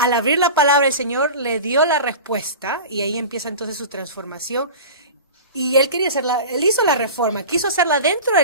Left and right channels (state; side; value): inverted; both; correlation -0.33